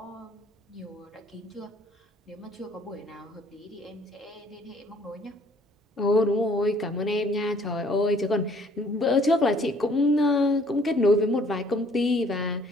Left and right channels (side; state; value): both; normal; correlation 0.59